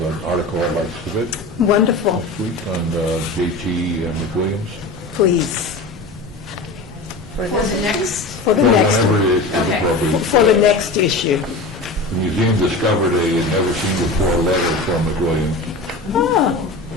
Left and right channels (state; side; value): quieter; right; 3.1 dB